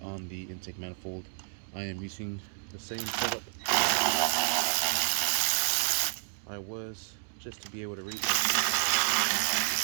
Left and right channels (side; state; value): left; silent; 58 dB below the other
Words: the intake manifold. I am using the same setup I was, just to be able to reach.